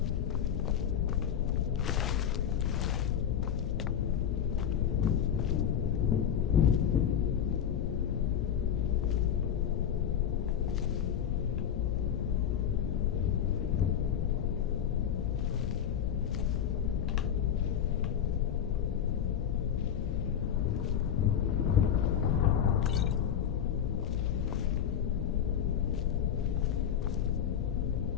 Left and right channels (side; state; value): right; quieter; 9.1 dB